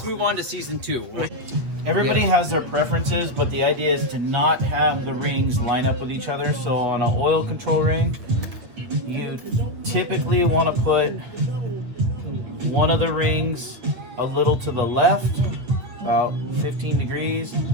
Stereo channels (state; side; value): late; left; 8.6 ms